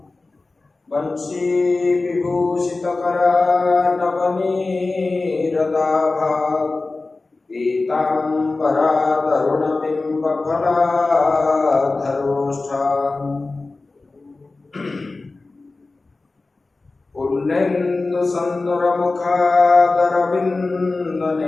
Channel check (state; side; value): quieter; right; 3.5 dB